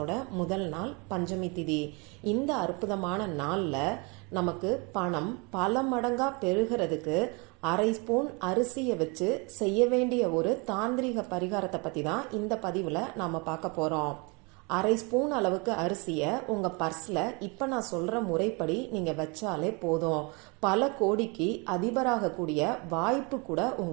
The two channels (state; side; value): quieter; left; 30.4 dB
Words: முதல் நாள், பஞ்சமி திதி. இந்த அற்புதமான நாள்ல நமக்கு பணம் பல மடங்கா பெருகிறதுக்கு அரை ஸ்பூன் அரிசியை வச்சு செய்ய வேண்டிய ஒரு தாந்திரிக பரிகாரத்தை பத்தி தான் இந்த பதிவுல நாம பார்க்க போறோம். அரை ஸ்பூன் அளவுக்கு அரிசியை உங்க பர்ஸ்ல இப்ப நான் சொல்ற முறைப்படி நீங்க வச்சாலே போதும். பல கோடிக்கு அதிபராக கூடிய வாய்ப்பு கூட